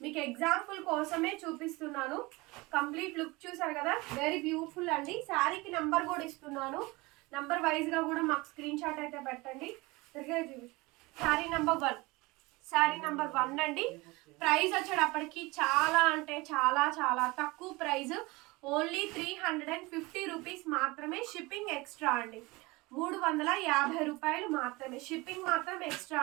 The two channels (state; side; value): quieter; left; 23.3 dB